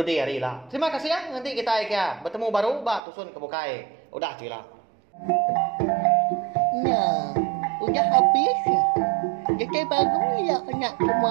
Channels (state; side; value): drops out; left; at 3.0 s